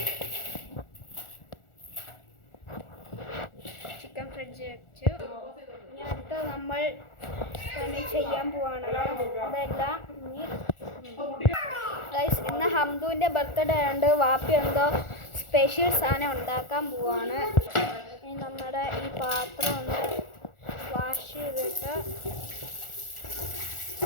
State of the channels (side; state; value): right; late; 1.4 ms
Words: ചിക്കൻ ഫ്രിഡ്ജിൽ വെച്ചു. ഇനി അടുത്ത നമ്മൾ പണി ചെയ്യാൻ പോവാണ്. അതെല്ലാം ഗൈസ്, ഇന്ന് ഹംദുവിൻ്റെ ബർത്ത്ഡേ ആയതുകൊണ്ട് വാപ്പി എന്തോ സ്പെഷ്യൽ സാധനം ഉണ്ടാക്കാൻ പോവാണ്. ഇനി നമ്മുടെ ഈ പാത്രം ഒന്ന് വാഷ് ചെയ്തിട്ട്